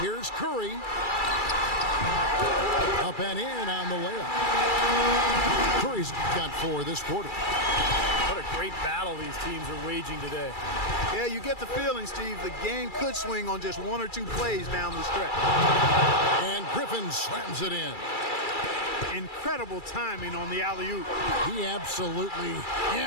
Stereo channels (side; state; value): right; late; 2.3 ms